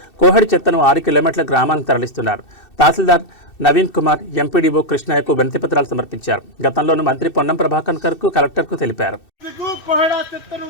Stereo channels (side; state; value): right; late; 2.6 ms